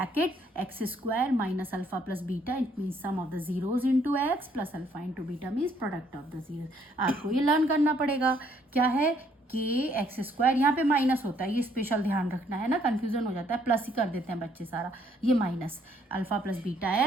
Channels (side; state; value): both; normal; correlation 0.66